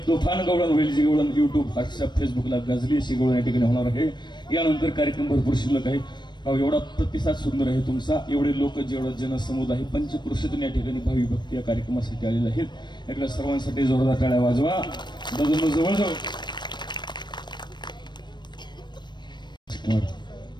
तुफान गवळण होईल, जी गवळण युट्यूब, व्हॉट्सअप, फेसबुकला गाजली अशी गवळण या ठिकाणी होणार आहे. यानंतर कार्यक्रम भरपूर शिल्लक आहे. एवढा प्रतिसाद सुंदर आहे तुमचा, एवढे लोक, जेवढा जनसमुदाय पंचक्रोशीतून या ठिकाणी भावी भक्ती या कार्यक्रमासाठी आलेले आहेत. एकदा सर्वांसाठी जोरदार टाळ्या वाजवा. दादा जवळ जाऊ.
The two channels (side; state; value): right; late; 0.22 ms